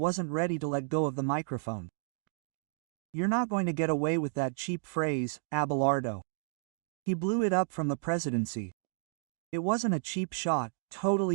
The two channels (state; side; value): silent; left; digital silence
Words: ready to let go of the microphone. "You're not going to get away with that cheap phrase, Abelardo." He blew it up from the presidency. It wasn't a cheap shot,